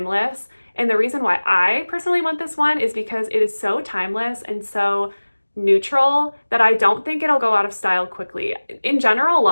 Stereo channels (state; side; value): inverted; both; correlation -1.00